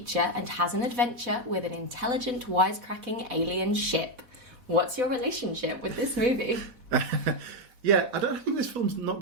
and has an adventure with an intelligent, wisecracking alien ship. What's your relationship with this movie? Yeah, I don't think this film's not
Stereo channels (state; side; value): late; left; 4.1 ms